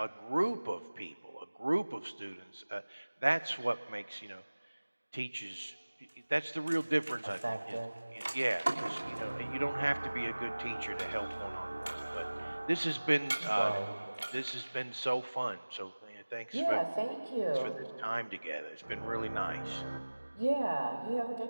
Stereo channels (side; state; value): both; inverted; correlation -1.00